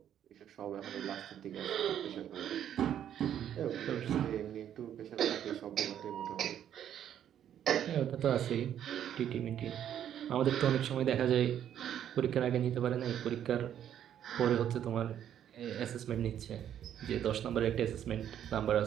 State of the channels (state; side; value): quieter; left; 10.1 dB